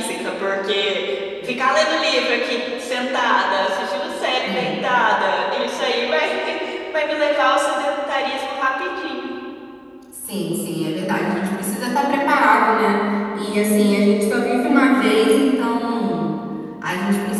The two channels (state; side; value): identical; both; correlation 1.00